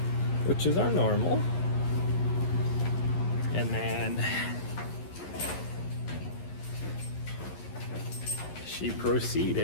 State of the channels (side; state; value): right; late; 11 ms